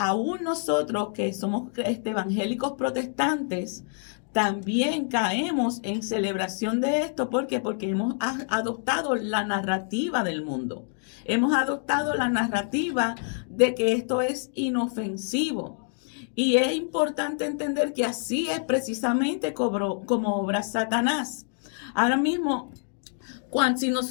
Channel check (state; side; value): silent; right; 55 dB below the other